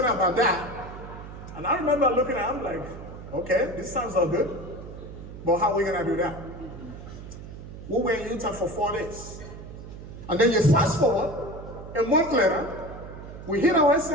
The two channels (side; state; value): right; noise; hum, 13 dB below the sound